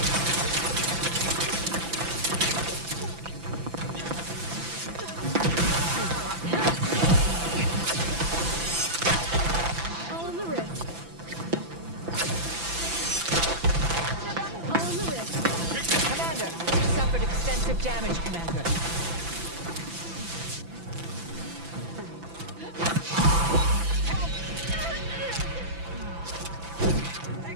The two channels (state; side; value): late; left; 5.9 ms